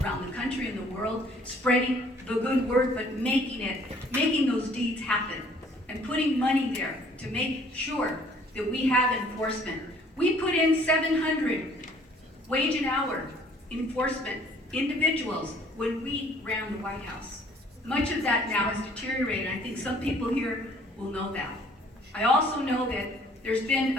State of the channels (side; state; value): both; normal; correlation 0.58